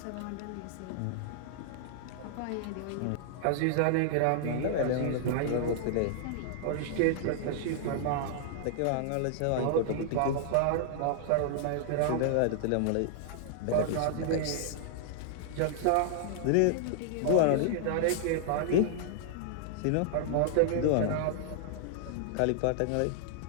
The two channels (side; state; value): both; different; correlation -0.01